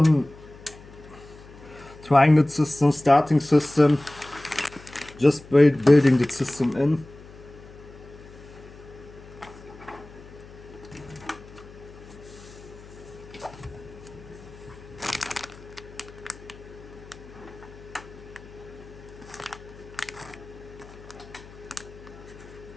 Trying that system, starting system. Just building the system in.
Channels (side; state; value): left; noise; hum, 19 dB below the sound